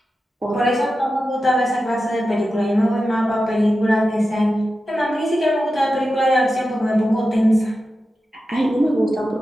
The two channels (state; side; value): normal; both; correlation 0.92